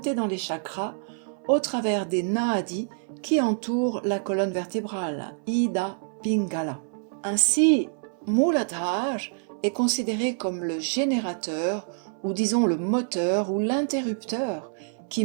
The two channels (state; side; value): silent; left; 60 dB below the other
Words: dans les chakras au travers des nadis qui entourent la colonne vertébrale, Ida Pingala. Ainsi, Muladhara est considéré comme le générateur ou disons le moteur ou l'interrupteur qui